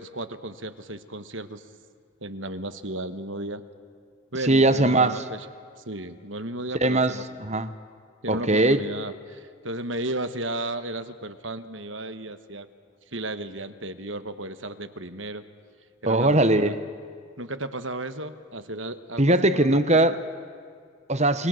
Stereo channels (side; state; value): both; normal; correlation 0.30